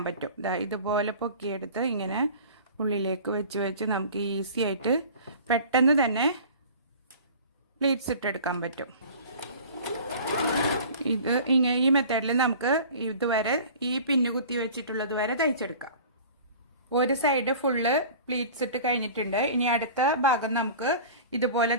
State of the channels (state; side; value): inverted; both; correlation -0.41